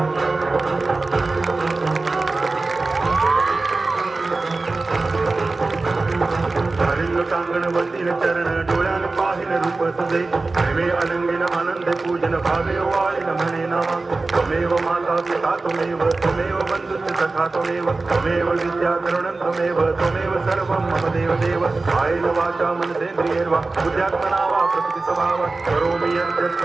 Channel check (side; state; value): left; quieter; 3.5 dB